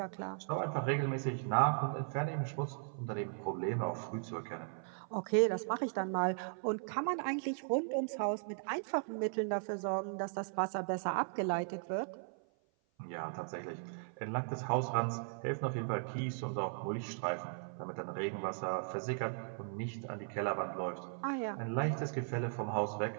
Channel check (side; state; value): left; silent; 53 dB below the other